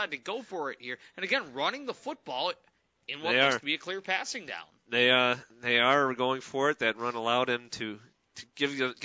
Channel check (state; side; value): identical; both; correlation 1.00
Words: to go for it here. And again, running the football in what looks to be a clear passing down. They are going for it. That run allowed him to